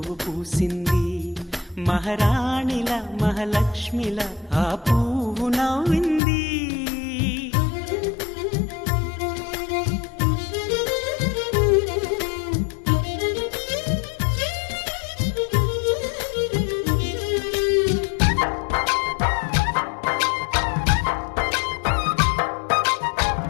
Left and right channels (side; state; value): right; drops out; at 6.2 s